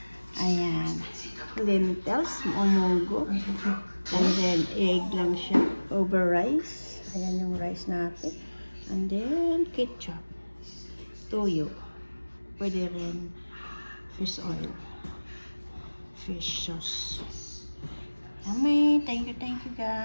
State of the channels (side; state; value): both; inverted; correlation -1.00